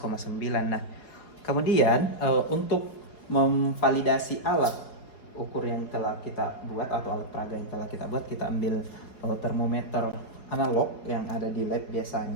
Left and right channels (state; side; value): late; right; 4.8 ms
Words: Nah, kemudian untuk memvalidasi alat ukur yang telah kita buat atau alat peraga yang telah kita buat, kita ambil termometer analog yang ada di lab